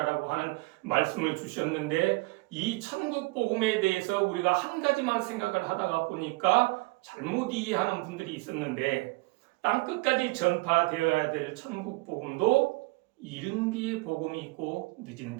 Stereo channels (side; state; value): left; quieter; 24.9 dB